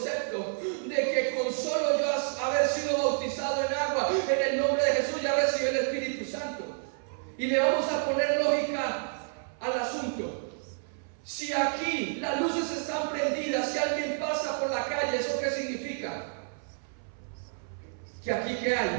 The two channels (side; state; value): left; silent; 58 dB below the other